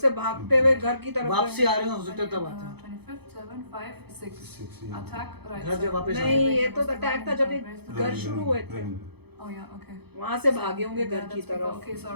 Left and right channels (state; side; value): late; left; 0.98 ms